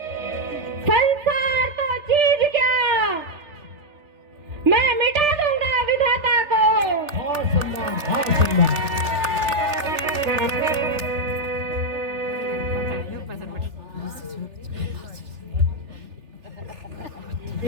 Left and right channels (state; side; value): late; left; 3.3 ms